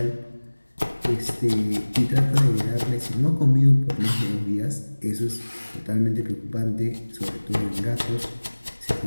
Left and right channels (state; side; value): inverted; both; correlation -1.00